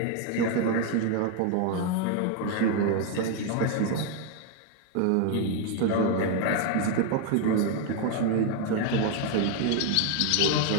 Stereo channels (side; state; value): both; different; correlation 0.01